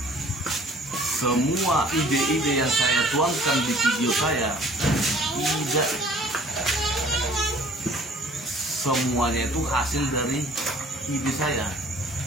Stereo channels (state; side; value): normal; both; correlation 0.53